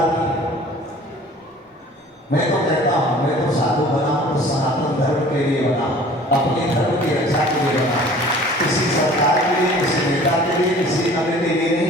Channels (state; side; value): normal; both; correlation 0.48